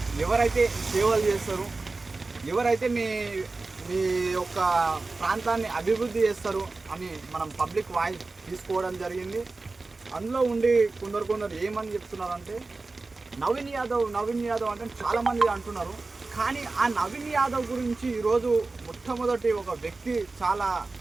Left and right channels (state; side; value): quieter; left; 3.6 dB